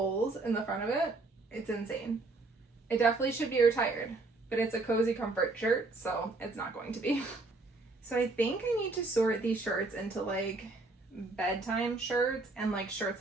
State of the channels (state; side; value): quieter; left; 3.3 dB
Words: in the front of it. It's insane. It definitely should be retired, but it's a cozy comfort shirt, so it's not going to be. So I think I need to sort these shirts into like bedtime shirts and like shirts